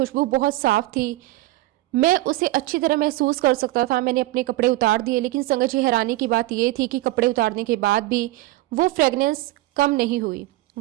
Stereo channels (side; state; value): left; quieter; 18.0 dB